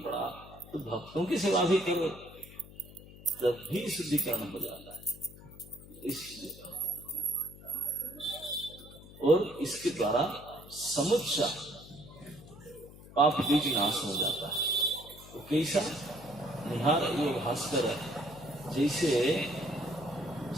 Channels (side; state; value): left; noise; hum, 18 dB below the sound